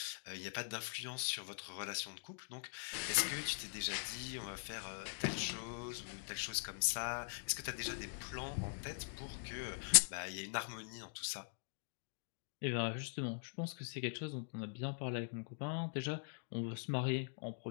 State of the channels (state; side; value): silent; right; digital silence